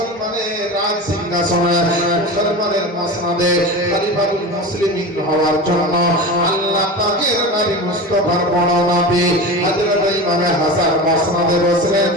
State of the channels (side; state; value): both; normal; correlation 0.28